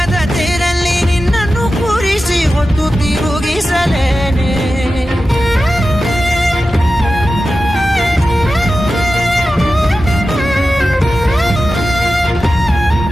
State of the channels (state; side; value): normal; both; correlation 0.93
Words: ತೇರಲ್ಲಿ ನಿನ್ನನ್ನು ಕೂರಿಸಿ ಹೊತ್ತು ತಿರುಗಿಸಲೇನೆ